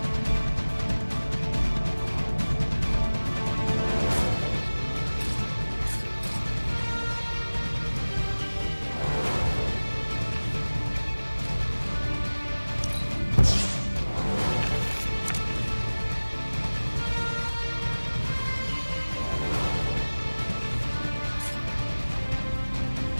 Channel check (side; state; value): both; inverted; correlation -1.00